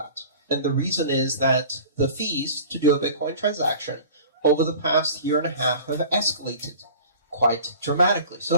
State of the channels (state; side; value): inverted; both; correlation -0.41